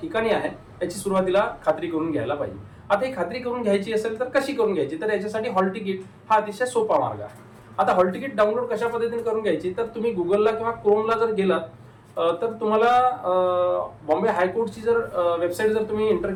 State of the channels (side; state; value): both; identical; correlation 1.00